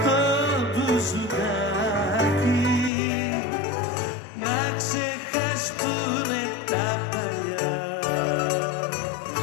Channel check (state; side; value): drops out; right; at 2.9 s